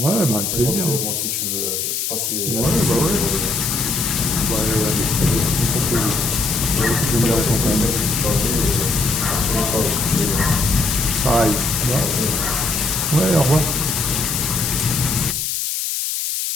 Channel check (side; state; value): left; noise; hiss, 1 dB below the sound